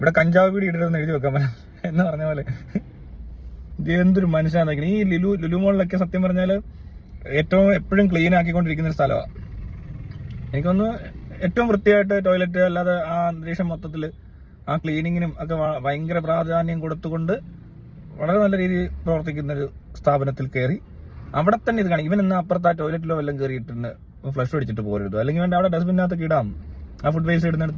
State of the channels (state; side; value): identical; both; correlation 1.00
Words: കഞ്ചാവ് പീടി ഇടരുതെന്ന് എഴുതി വെക്കാൻ പറ്റും എന്ന് പറഞ്ഞ പോലെ. എന്തൊരു മനുഷ്യനാണെന്ന്. ഈ ലുലു മോളിലൊക്കെ സത്യം പറഞ്ഞാല് ഏറ്റവും എപ്പോഴും ക്ലീൻ ആക്കിക്കൊണ്ടിരിക്കുന്ന ഒരു സ്ഥലമാണ്. എനിക്കൊന്ന് ഏറ്റവും വൃത്തിയായിട്ട് ടോയ്ലറ്റ് അല്ലാതെ ആ അന്തരീക്ഷം മൊത്തത്തിൽ ആ ക്ലീനിങ്ങിനും ഒക്കെ ഭയങ്കര പ്രാധാന്യം കൊടുത്തുകൊണ്ട് വളരെ നല്ല രീതിയിൽ പ്രവർത്തിക്കുന്ന ഒരു സ്ഥാപനത്തിൽ കയറി അവിടെ തന്നെ ഇത് കാണും. ഇവൻ ഇന്ന് അപ്പുറത്ത് ആ ടോയ്ലറ്റിലോ വല്ലതും കയറിയിട്ടുണ്ട് ഫ്ലഷ് അടിച്ചിട്ട് പോരുത്, അല്ലെങ്കിൽ വേണ്ട അവിടെ ഡസ്റ്റ്ബിനകത്തൊക്കെ ഇടാം. ആ ഫുഡ് വേസ്റ്റ്